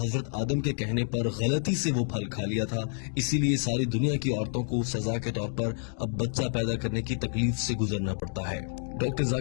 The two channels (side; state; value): right; silent; digital silence